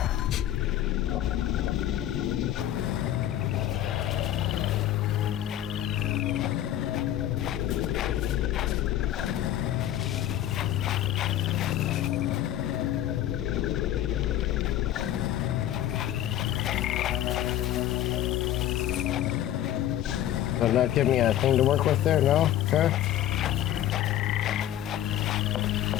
Does that give me a thing to work with there? No? Okay.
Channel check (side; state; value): right; quieter; 12.2 dB